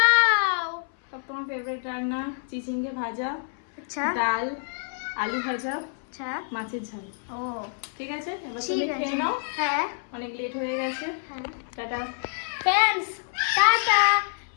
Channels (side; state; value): right; silent; 59 dB below the other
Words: সব তোমার ফেভারিট রান্না, চিচিঙ্গে ভাজা, আচ্ছা ডাল, আলু ভাজা, আচ্ছা। মাছের ঝাল। ও ঠিক আছে, এবার ঠিক তুমি আছে। খেয়ে নাও, হ্যাঁ অনেক লেট হয়ে গেছে। হ্যাঁ। Tata. Friends tata.